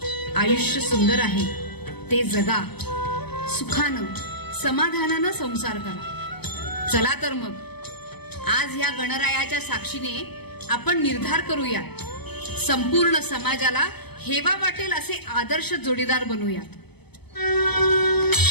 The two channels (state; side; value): late; right; 0.98 ms